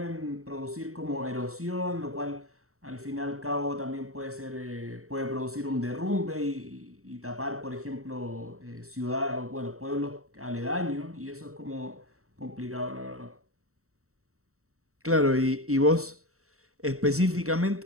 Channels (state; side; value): late; left; 0.64 ms